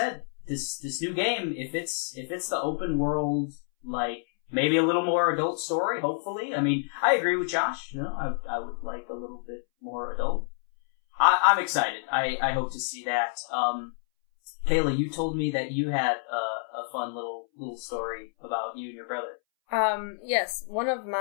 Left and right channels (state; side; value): silent; right; 59 dB below the other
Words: this new game, if it's the open world, like, maybe a little more adult story, hopefully. I mean, I agree with Josh, you know, I would like a little bit more adult. I'm excited. I hope to see that. Kayla, you told me that you had a fun little story about you and your brother. Yes, one of